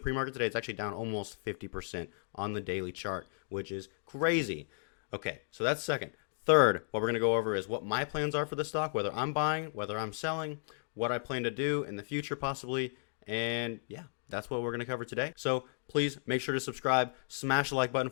pre-market today, it's actually down almost 50% on the daily chart, which is crazy. Okay, so that's second. Third, what we're going to go over is what my plans are for the stock, whether I'm buying, whether I'm selling, what I plan to do in the future possibly, and yeah, that's what we're going to cover today. So please make sure to subscribe, smash the like button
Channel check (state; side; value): silent; right; digital silence